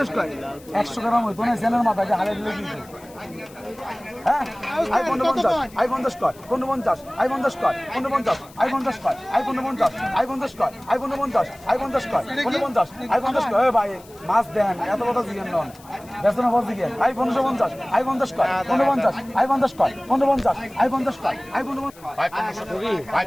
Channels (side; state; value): left; noise; hiss, 24 dB below the sound